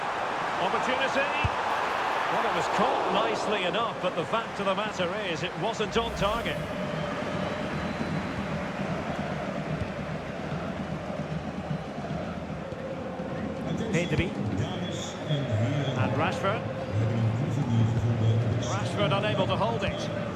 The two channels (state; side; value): identical; both; correlation 1.00